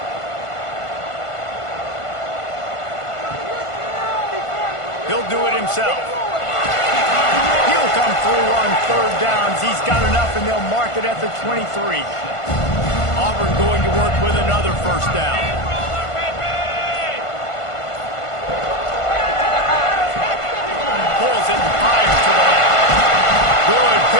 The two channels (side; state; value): right; late; 1.5 ms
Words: He'll do it himself. He'll come through on 3rd downs. He's got enough, and they'll mark it at the 23. Auburn going to work with another first down. Pulls it and fires to the left. Good